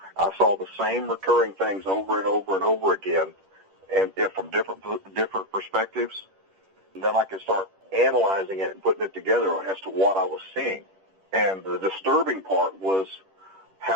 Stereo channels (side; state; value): left; late; 10 ms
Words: I saw the same recurring things over and over and over again, and from different perspectives. And then I could start analyzing it and putting it together as to what I was seeing. And the disturbing part was